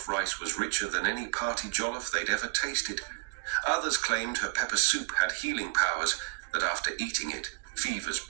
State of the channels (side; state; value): left; quieter; 33.1 dB